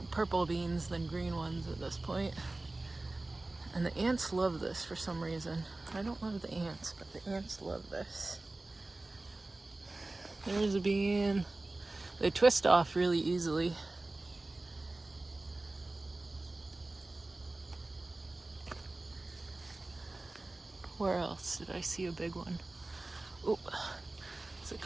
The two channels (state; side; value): quieter; left; 3.0 dB